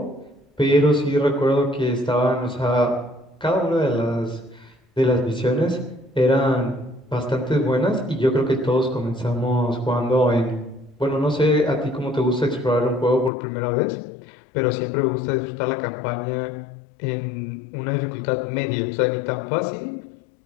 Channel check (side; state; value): right; drops out; at 13.3 s